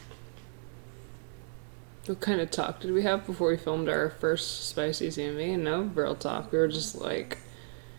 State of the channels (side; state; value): left; silent; digital silence